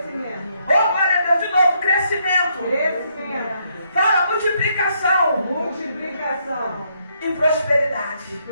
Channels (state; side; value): inverted; both; correlation -0.74